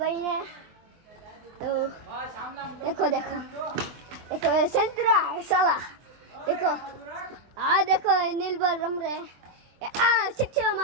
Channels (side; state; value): left; late; 23 ms